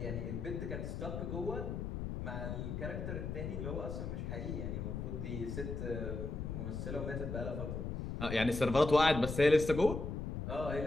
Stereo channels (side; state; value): left; noise; rumble, 4 dB below the sound